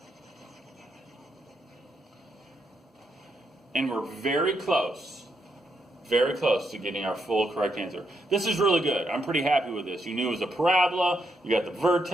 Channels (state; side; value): normal; both; correlation 0.80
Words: And we're very close to getting our full correct answer. This is really good. I'm pretty happy with this. You knew it was a parabola. You got the